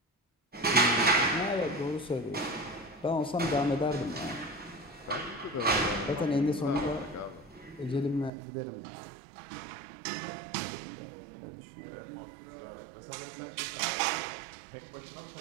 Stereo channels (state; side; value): drops out; left; at 8.3 s